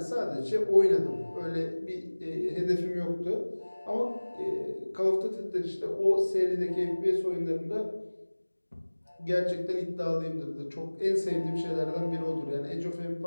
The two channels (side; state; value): both; inverted; correlation -1.00